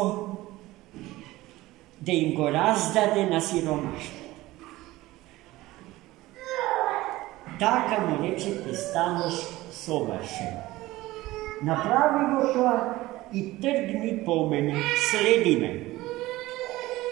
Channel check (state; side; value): quieter; left; 18.1 dB